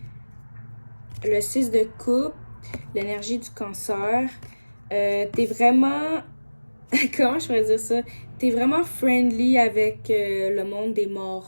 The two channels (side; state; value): both; inverted; correlation -1.00